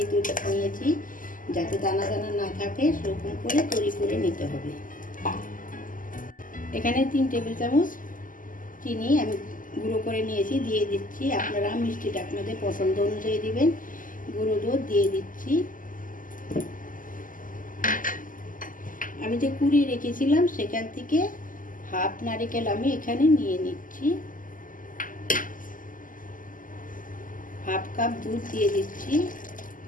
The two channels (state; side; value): late; right; 0.39 ms